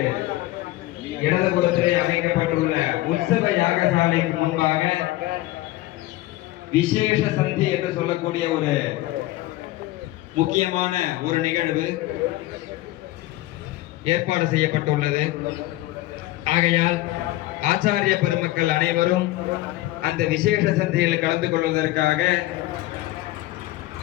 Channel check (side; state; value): right; quieter; 17.3 dB